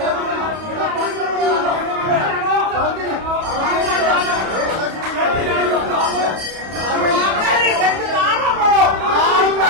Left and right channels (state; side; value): late; left; 31 ms